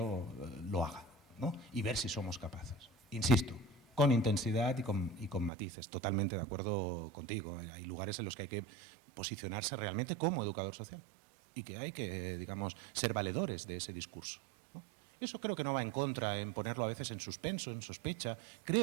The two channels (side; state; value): left; drops out; at 5.5 s